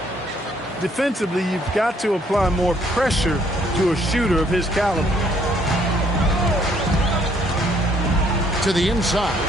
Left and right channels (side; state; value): both; normal; correlation 0.66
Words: Defensively, you've got to apply more pressure to a shooter of his caliber. To the inside.